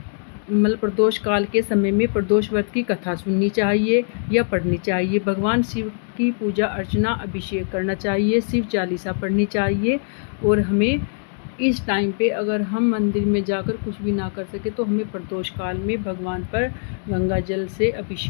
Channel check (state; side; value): silent; right; digital silence